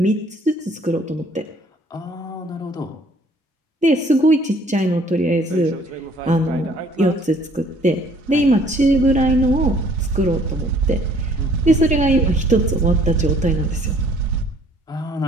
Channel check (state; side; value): normal; both; correlation 0.58